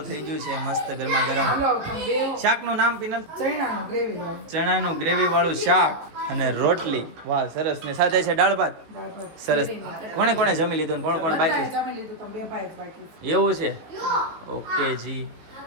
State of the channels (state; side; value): late; left; 18 ms